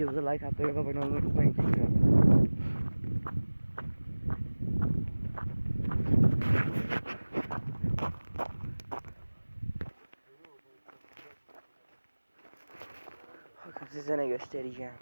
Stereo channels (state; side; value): inverted; both; correlation -1.00